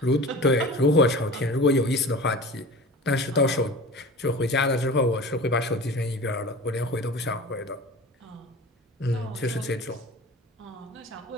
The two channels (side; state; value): both; normal; correlation 0.37